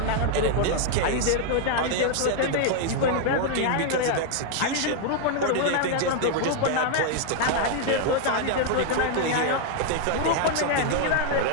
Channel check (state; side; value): different; both; correlation 0.00